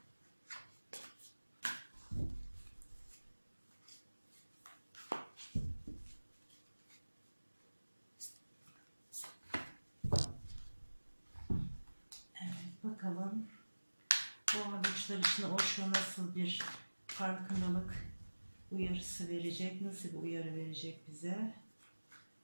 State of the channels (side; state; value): both; inverted; correlation -1.00